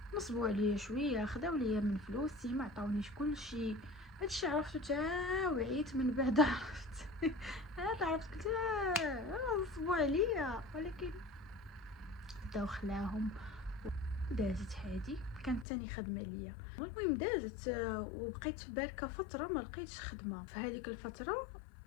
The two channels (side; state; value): right; drops out; at 15.7 s